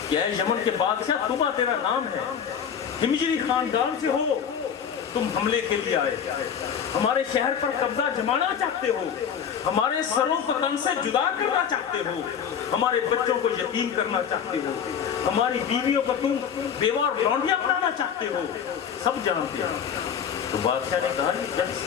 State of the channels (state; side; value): quieter; right; 7.9 dB